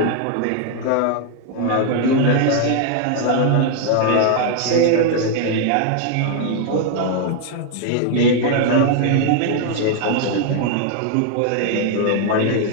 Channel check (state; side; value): different; both; correlation 0.00